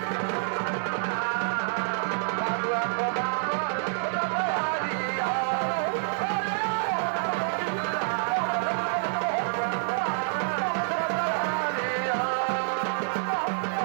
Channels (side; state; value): left; silent; 55 dB below the other